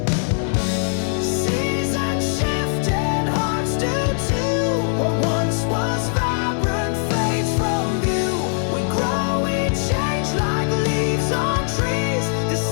Seasons shift and hearts do too. What once was vibrant fades from view. We grow, we change like leaves on trees. The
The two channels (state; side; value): silent; right; 58 dB below the other